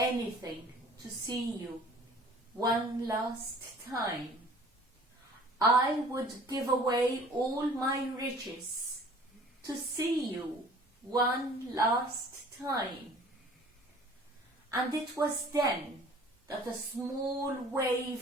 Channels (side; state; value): both; normal; correlation 0.50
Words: to see you one last time. I would give away all my riches to see you one last time." And it was then that a small